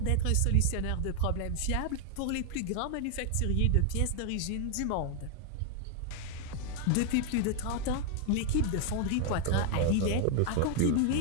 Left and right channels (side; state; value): both; different; correlation 0.00